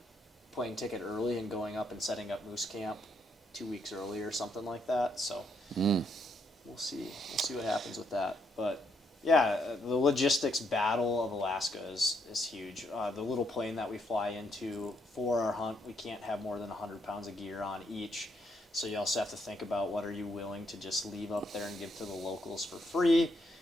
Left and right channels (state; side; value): normal; both; correlation 0.75